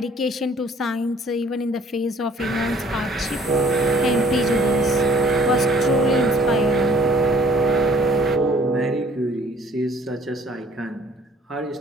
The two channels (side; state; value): both; normal; correlation 0.56